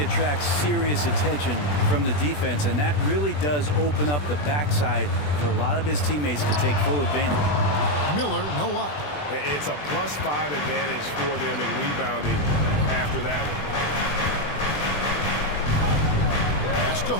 attracts serious attention from the defense, and that really does open up the backside for a lot of his teammates to take full advantage. Miller, no up. It's a +5 advantage for them in rebounding after that one. Pass to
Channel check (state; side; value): late; right; 20 ms